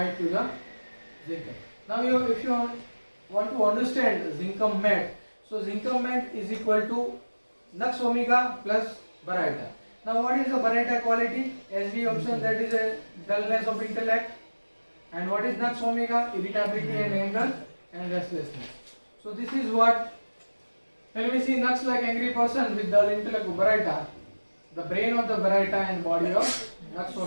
to the Zincum. Now if you want to understand Zincum mat, so Zincum mat is equal to Nux omega plus Baryta. Now what is the Baryta quality? As we observed, that is a dullness of intellect. And what is Nux omega? Irritability and anger and restlessness. So this is what, when we see Nux like angry person with dull intellect of Baryta, the brain of the Baryta and body of Nux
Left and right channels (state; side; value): inverted; both; correlation -1.00